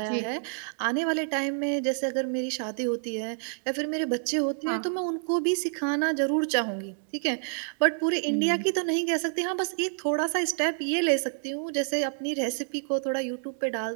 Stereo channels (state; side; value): silent; left; digital silence